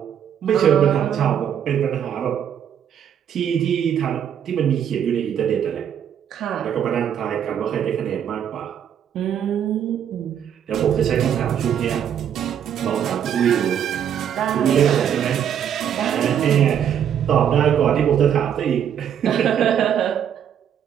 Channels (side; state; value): left; quieter; 9.0 dB